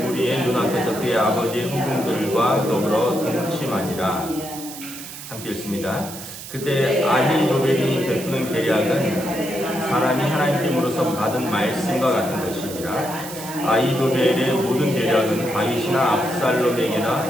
무리의 눈앞에서 그의 아버지의 후궁들과 더불어 동침하니라. 함께 읽습니다. 그때 아히도벨이 베푸는 계략은 사람이 하나님께로서 받은 말씀과 같은 것이니라. 아히도벨의 모든 계략은 다윗이나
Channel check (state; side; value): noise; right; hiss, 12 dB below the sound